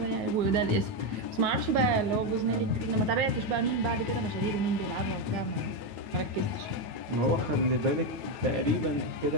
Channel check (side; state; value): left; late; 9.4 ms